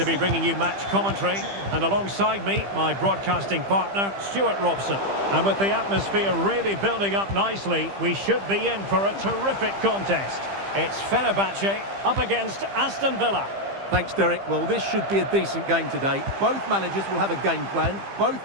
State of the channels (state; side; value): late; left; 15 ms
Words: be bringing you match commentary. And alongside me, my broadcasting partner, Stuart Robson. And with the atmosphere really building up nicely, we should be in for a terrific contest. It's Fenerbahce up against Aston Villa. Thanks, Derek. Well, this should be a decent game today. Both managers will have a game plan. Both